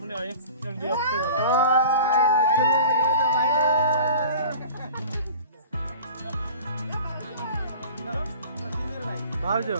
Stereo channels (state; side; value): inverted; both; correlation -0.40